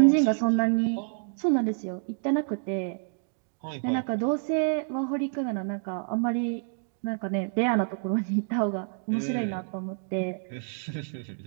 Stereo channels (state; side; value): silent; left; digital silence